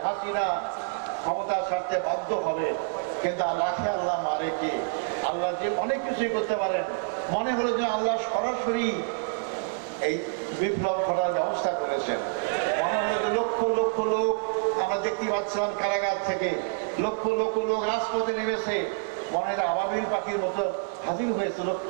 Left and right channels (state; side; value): silent; left; digital silence